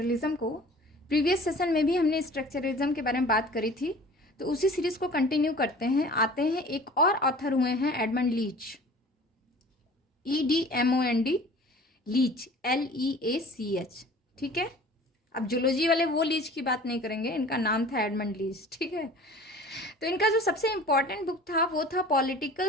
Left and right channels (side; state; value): both; normal; correlation 0.45